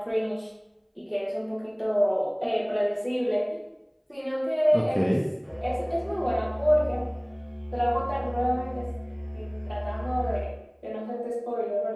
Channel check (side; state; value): both; identical; correlation 1.00